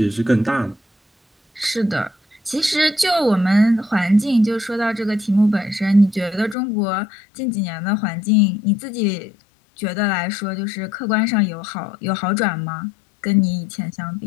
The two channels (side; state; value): right; drops out; at 6.6 s